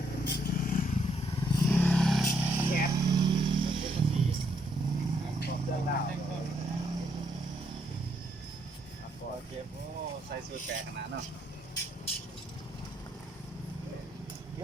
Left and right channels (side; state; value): both; normal; correlation 0.73